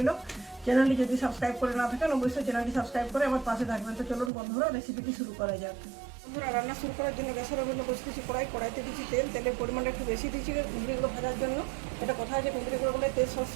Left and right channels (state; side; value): drops out; left; at 4.3 s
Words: চ্যানেলটি যদি সাবস্ক্রাইব করে না থাকেন অবশ্যই চ্যানেলটি সাবস্ক্রাইব করে আমার পাশে থাকবেন। তো চলুন বন্ধুরা রেসিপিটি শুরু করা যাক। বন্ধুরা, রান্না শুরু করার জন্য গ্যাসের ওভেনে বসে দিচ্ছি কড়াইতে দিচ্ছি তেলের পরিমাণটা একটু বেশি দিচ্ছি কুন্দ্রিগুলো ভাজার জন্য। এটা কথা আছে, কুন্দ্রিগুলো বলে তেল